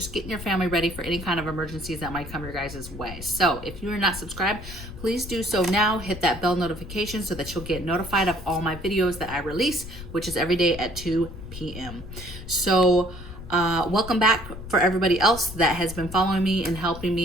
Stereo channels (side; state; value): left; noise; rumble, 12 dB below the sound